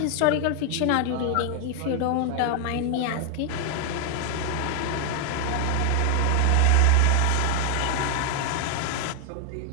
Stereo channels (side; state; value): both; different; correlation 0.00